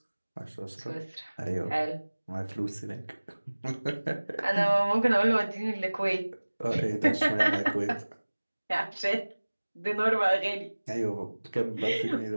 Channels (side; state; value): both; inverted; correlation -1.00